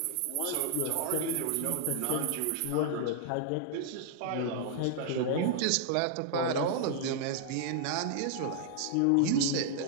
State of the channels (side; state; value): both; different; correlation 0.00